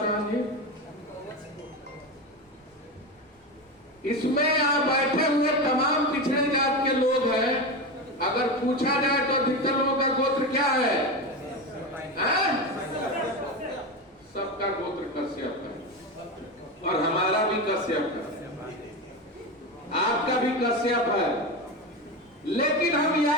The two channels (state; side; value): normal; both; correlation 0.19